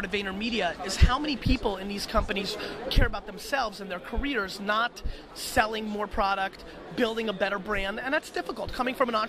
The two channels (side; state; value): both; identical; correlation 1.00